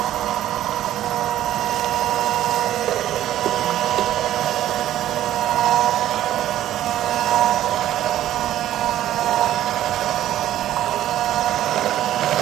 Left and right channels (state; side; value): quieter; left; 12.7 dB